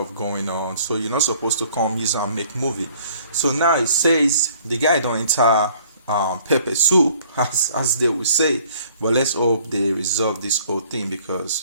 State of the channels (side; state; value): both; inverted; correlation -0.57